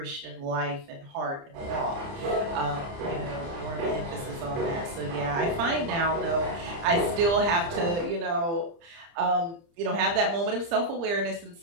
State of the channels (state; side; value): late; left; 30 ms